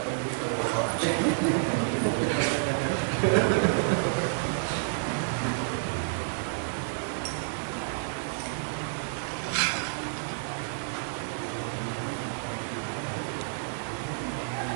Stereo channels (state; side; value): silent; left; 55 dB below the other